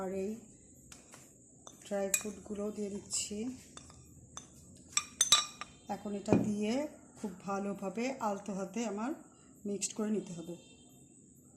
এই ড্রাই ফ্রুটগুলো দিয়ে দিচ্ছি। এখন এটা দিয়ে খুব ভালোভাবে আলতো হাতে আমার মিক্সড করে নিতে হবে।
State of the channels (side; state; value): both; identical; correlation 1.00